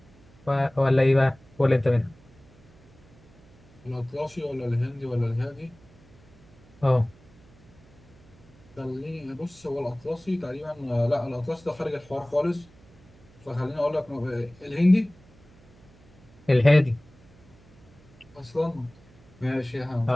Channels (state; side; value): noise; right; hum, 26 dB below the sound